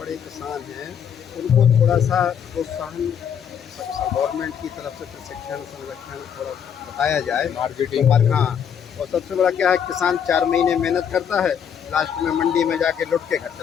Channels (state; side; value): quieter; right; 8.1 dB